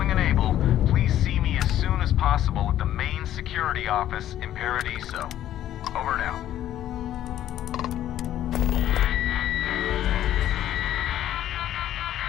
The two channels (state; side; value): quieter; right; 12.1 dB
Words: and able, please see me as soon as possible at the main security office in Paradiso. Over now.